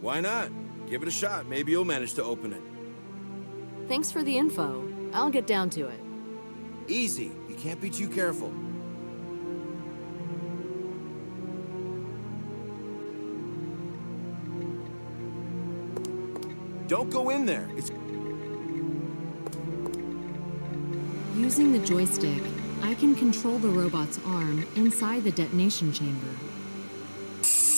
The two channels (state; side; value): inverted; both; correlation -1.00